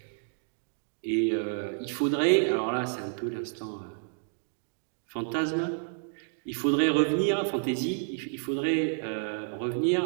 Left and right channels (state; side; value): silent; left; digital silence